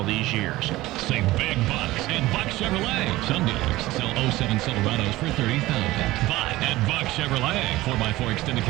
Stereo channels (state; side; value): quieter; left; 17.9 dB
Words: these years. Save big bucks at Buck Chevrolet. Some dealers sell 07 Silverados for $30,000. But at Buck Chevrolet, 4x4 extended